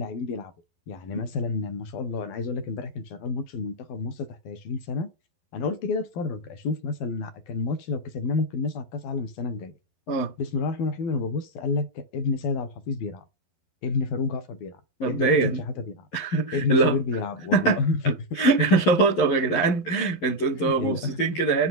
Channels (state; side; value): late; right; 12 ms